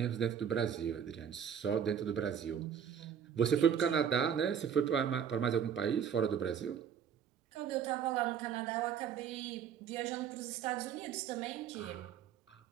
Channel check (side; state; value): left; quieter; 8.2 dB